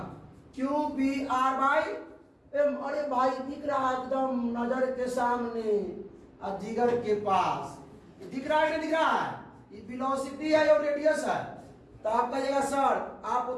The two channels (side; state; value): both; identical; correlation 1.00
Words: Q B R by M. अरे भाई दिख रहा है एकदम नजर के सामने, जिगर के पास दिख रहा है, नहीं दिख रहा है? ये वेलोसिटी है और रेडियस है। तो आप कहिएगा सर आप